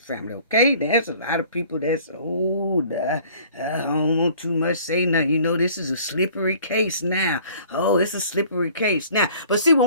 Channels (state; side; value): inverted; both; correlation -0.52